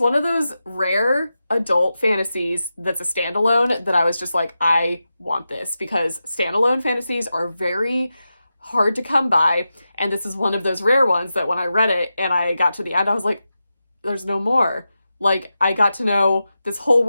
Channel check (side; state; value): both; inverted; correlation -0.91